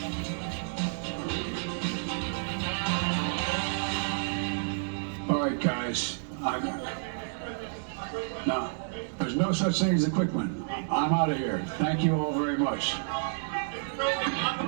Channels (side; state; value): left; silent; digital silence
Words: All right, guys. No, there's no such thing as a quick one. I'm out of here. Thank you all very much.